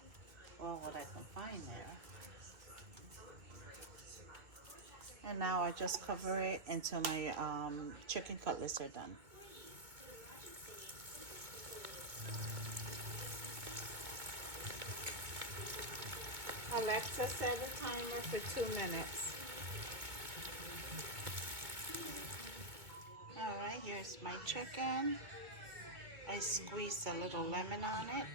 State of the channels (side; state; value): left; late; 2.2 ms